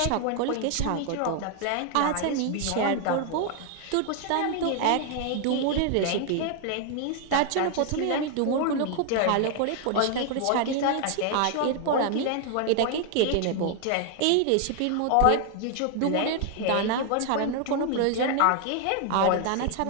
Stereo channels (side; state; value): both; different; correlation 0.00